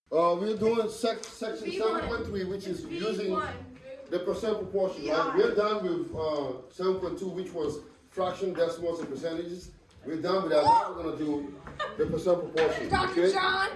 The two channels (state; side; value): identical; both; correlation 1.00